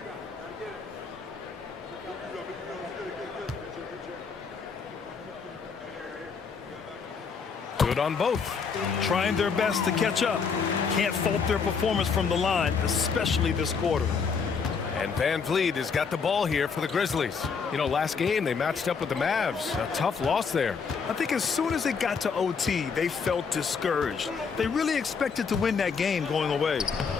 Good on both. Trying their best to catch up. Can't fault their performance from the line, especially this quarter. And Van Vliet has got the ball here for the Grizzlies. You know, last game they matched up with the Mavs. A tough loss there. I think as soon as it got to OT, they felt discouraged. They really expected to win that game going away.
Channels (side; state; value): right; quieter; 5.6 dB